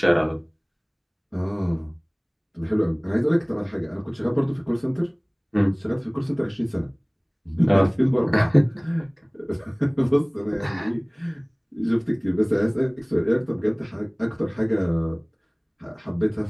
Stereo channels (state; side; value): identical; both; correlation 1.00